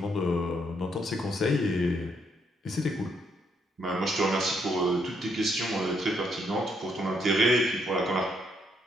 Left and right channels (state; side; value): normal; both; correlation 0.74